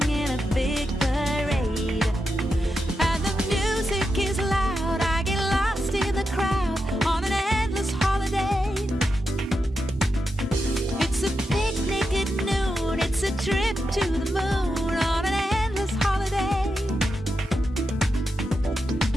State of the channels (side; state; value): both; normal; correlation 0.87